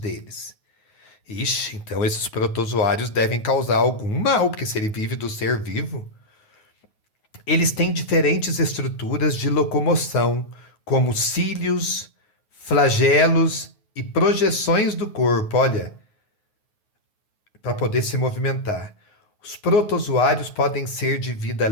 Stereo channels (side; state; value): right; late; 9.4 ms